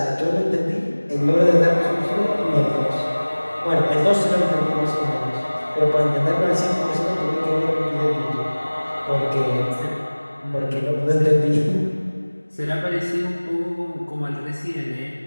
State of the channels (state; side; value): inverted; both; correlation -1.00